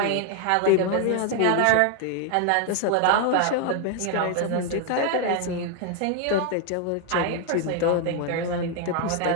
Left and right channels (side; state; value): both; different; correlation 0.00